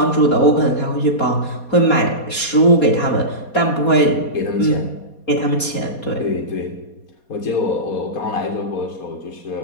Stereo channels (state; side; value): late; right; 4.2 ms